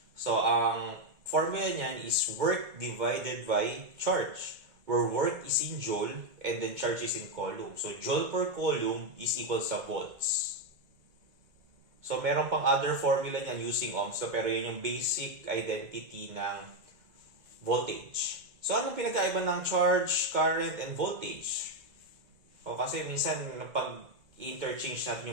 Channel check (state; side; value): late; left; 2.2 ms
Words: So, ang formula niyan is work divided by charge, where work is in joule and then charge is in coulomb. So, joule per coulomb is equal sa volts. So, meron pang other formula niyan using ohms. So, pero yun yung basic identity ng voltage. So, anong pinagkaiba ng charge, current, and voltage? O kasi minsan pag-interchange natin